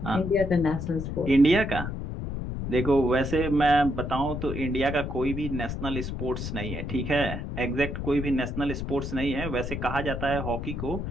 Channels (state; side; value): noise; left; rumble, 5 dB below the sound